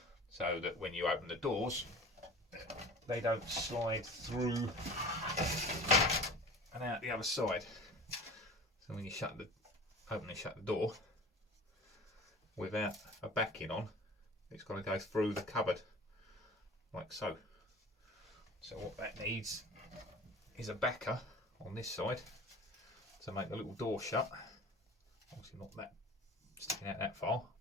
so that when you open the doors they don't slide through and out the other side. So when you open and shut the door without a backing on, it's got to go through the cupboard like so. So what that needs is a backer on this side to make the little door shut. Obviously not that sticking out that far,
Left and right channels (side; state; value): both; normal; correlation 0.39